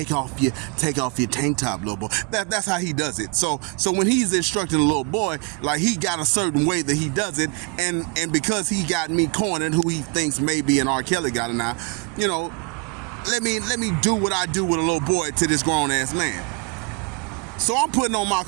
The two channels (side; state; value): left; quieter; 30.8 dB